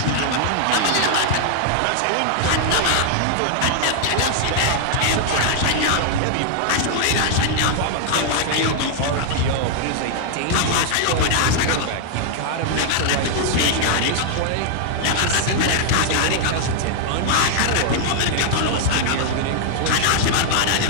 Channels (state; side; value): different; both; correlation 0.00